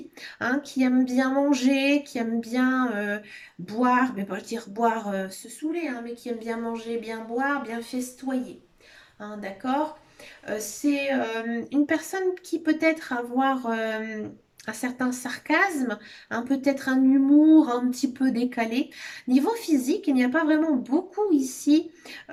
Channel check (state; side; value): identical; both; correlation 1.00